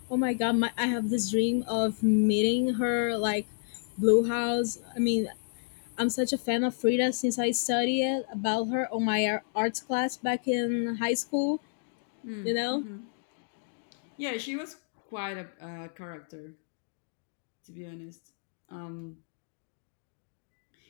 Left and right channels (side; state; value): right; silent; digital silence